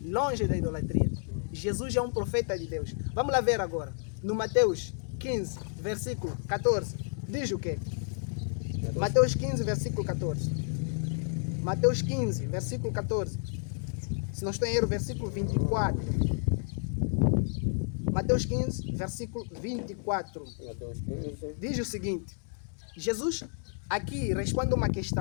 longe da idolatria. Jesus é um profeta de Deus. Vamos lá ver agora. No Mateus 15, versículo 14. Diz o quê? Mateus 15, versículo 14. Mateus 15, versículo 14. Se não estou em erro, versículo 24. Mateus 15, versículo 24. Mateus 15. Diz o seguinte. Jesus aqui responde uma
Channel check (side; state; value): right; silent; 57 dB below the other